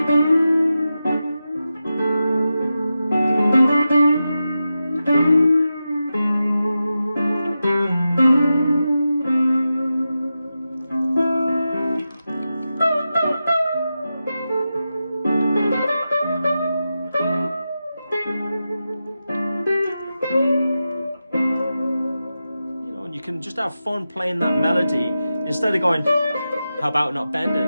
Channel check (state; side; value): inverted; both; correlation -0.91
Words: know, and you can just have fun playing that melody instead of going, how about not bend